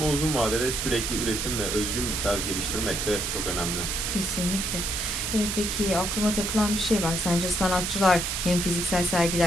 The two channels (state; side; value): noise; right; hiss, 1 dB below the sound